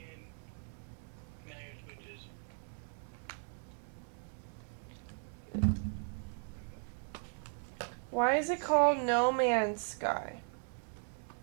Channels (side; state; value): left; silent; 53 dB below the other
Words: Why is it called No Man's Sky?